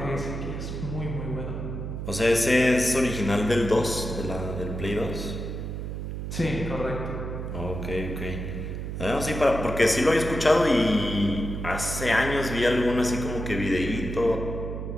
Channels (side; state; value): right; noise; hum, 5 dB below the sound